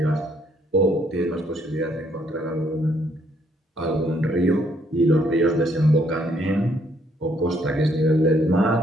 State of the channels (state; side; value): normal; both; correlation 0.69